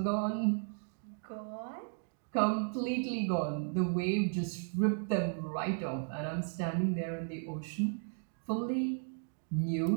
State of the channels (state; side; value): silent; left; 54 dB below the other